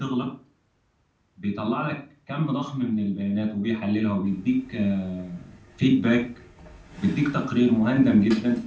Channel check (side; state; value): both; identical; correlation 1.00